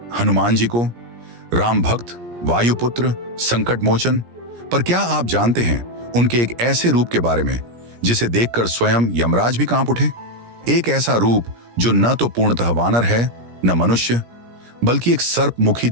हनुमान जी को, राम भक्त, वायुपुत्र, संकट मोचन। पर क्या आप जानते हैं उनके एक ऐसे रूप के बारे में जिसे देखकर स्वयं यमराज भी कांप उठे? एक ऐसा रूप जो न तो पूर्णतः वानर है न मनुष्य, बल्कि एक सर्पमुखी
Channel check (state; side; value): late; left; 17 ms